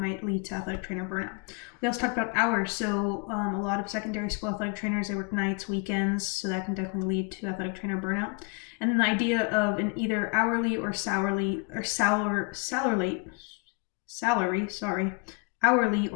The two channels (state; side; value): quieter; right; 32.0 dB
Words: lead to athletic trainer burnout. We also talked about hours. So a lot of secondary school athletic trainers, they work nights, weekends, so that can definitely lead to athletic trainer burnout. And then the idea of an either hourly or hourly or